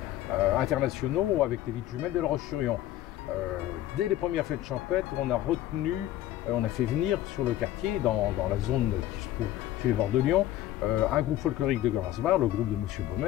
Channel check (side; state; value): right; quieter; 13.7 dB